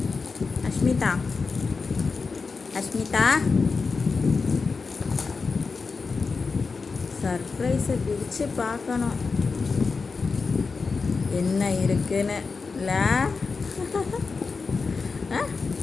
அஷ்மிதா அஷ்மிதா சர்ப்ரைஸை பிரித்து பார்க்கணும் என்ன இருக்குன்னு இல்லை.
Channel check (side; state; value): right; quieter; 4.6 dB